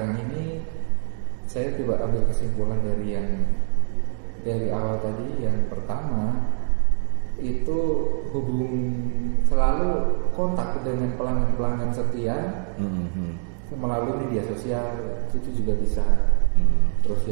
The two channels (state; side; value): silent; left; digital silence